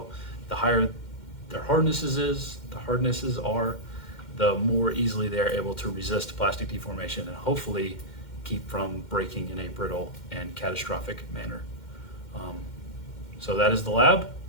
the higher their hardnesses are, the more easily they're able to resist plastic deformation and hopefully keep from breaking in a brittle and catastrophic manner. So that is the lab.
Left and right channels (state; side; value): late; right; 2.1 ms